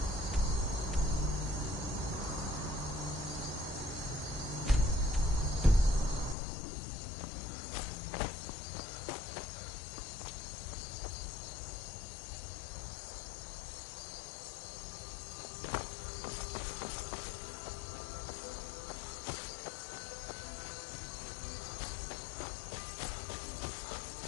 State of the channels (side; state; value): right; drops out; at 6.4 s